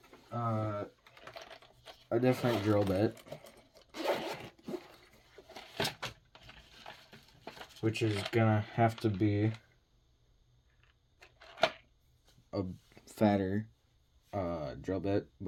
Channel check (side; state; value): both; identical; correlation 1.00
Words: a different drill bit, which is gonna have to be a fatter drill bit,